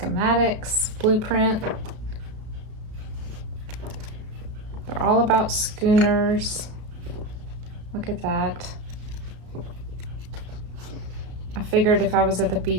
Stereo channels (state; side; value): late; left; 33 ms